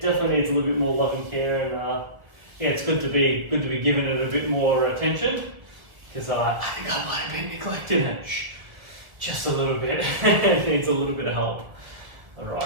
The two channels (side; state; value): left; late; 1.5 ms